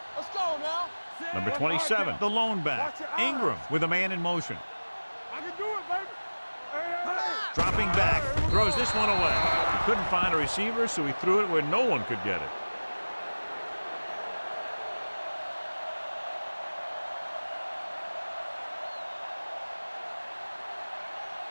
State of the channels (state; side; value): inverted; both; correlation -1.00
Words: Let's go now. Number 27, the lone back, Ingram with a man in motion. I can do it, baby. Dropping back, throws this one away. He couldn't find a receiver, so he threw it where no one could get it.